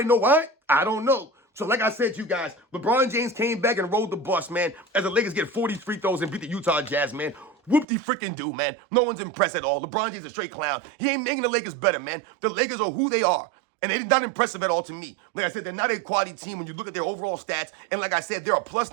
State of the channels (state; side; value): drops out; left; at 7.9 s